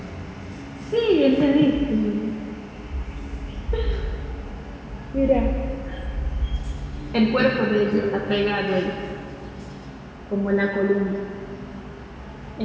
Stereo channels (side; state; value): both; identical; correlation 1.00